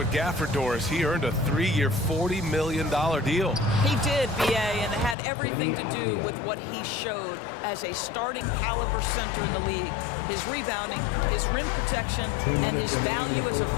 Gafford, Doris, he earned a 3-year, $40 million deal. He did, B.A., and it had everything to do with what he showed as a starting caliber center in the league. His rebounding, his rim protection, and his value as a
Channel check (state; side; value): drops out; right; at 5.2 s